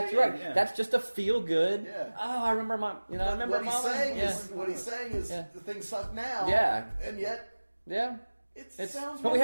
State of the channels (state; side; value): inverted; both; correlation -1.00